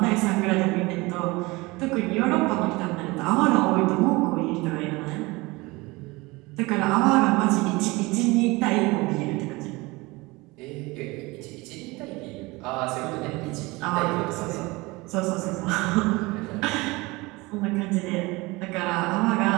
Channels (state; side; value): quieter; left; 23.1 dB